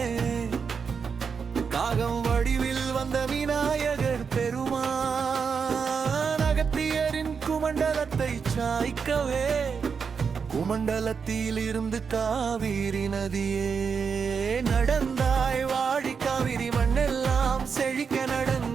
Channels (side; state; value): left; quieter; 6.0 dB